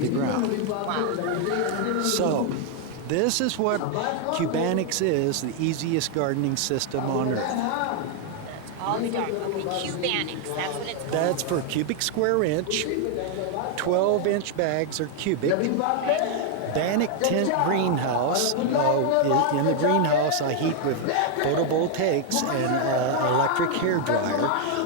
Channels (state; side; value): different; both; correlation 0.00